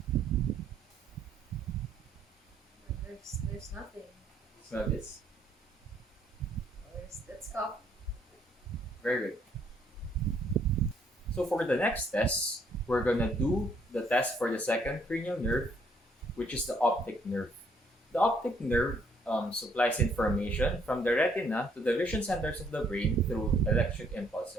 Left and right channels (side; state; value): both; normal; correlation 0.67